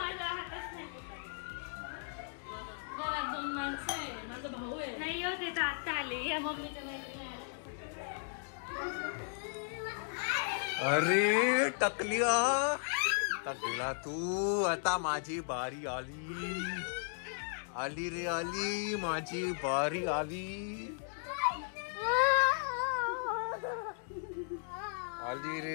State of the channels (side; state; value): right; silent; digital silence